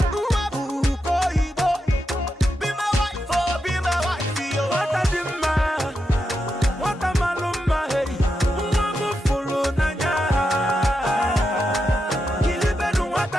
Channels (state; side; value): normal; both; correlation 0.86